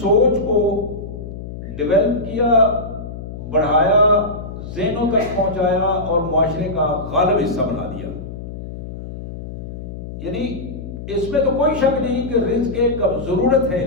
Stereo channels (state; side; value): noise; left; hum, 10 dB below the sound